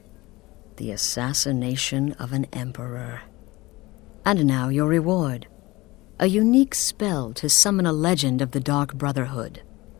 The assassination of an emperor. And now your reward. A unique spell to summon a legend of the Dark Brotherhood.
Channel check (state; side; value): quieter; right; 20.7 dB